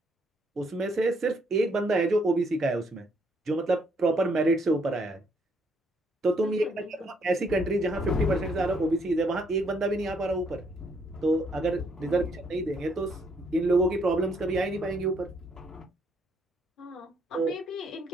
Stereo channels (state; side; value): normal; both; correlation 0.70